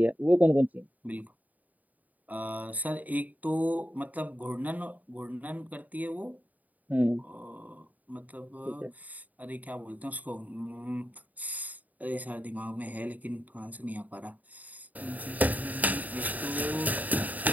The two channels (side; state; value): left; late; 0.077 ms